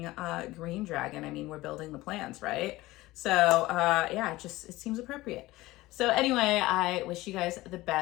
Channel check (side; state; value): right; quieter; 18.6 dB